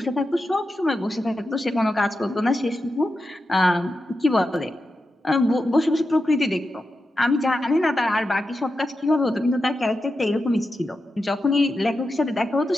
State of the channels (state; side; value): normal; both; correlation 0.89